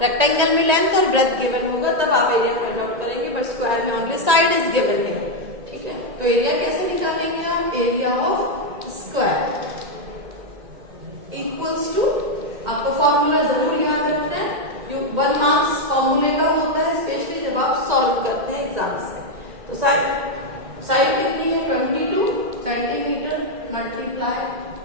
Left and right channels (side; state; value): left; late; 1.9 ms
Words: में लेंथ और ब्रेथ गिवन होगा, तब आप एरिया फाइंड आउट करेंगे, बट स्क्वायर में ओनली साइड इज गिवन है, ठीक है। तो एरिया कैसे निकालेंगे आप, area of square equals to, आपको फॉर्मूला जरूर याद रखना है, जो 1 मार्क्स फॉर्मूले का होता है, स्पेशली जब आप सॉल्व करते हैं एग्जाम्स में। तो साइड कितनी है, 22 सेंटीमीटर मल्टीप्लाई